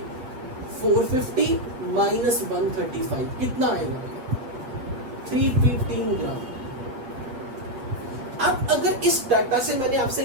450 minus 135, कितना आएगा? 315 ग्राम। अब अगर इस डाटा से मैंने आपसे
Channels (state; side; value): late; left; 7.9 ms